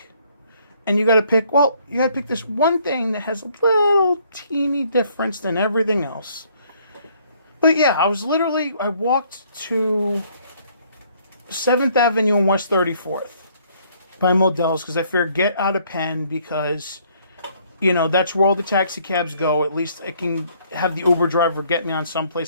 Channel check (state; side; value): inverted; both; correlation -0.64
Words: And you got to pick, this one thing that has a little teeny difference than everything else. But yeah, I walked to 7th Avenue and West 34th by Modell's because I figured get out of Penn because, that's where all the taxi cabs go. At least I can have the Uber driver get me on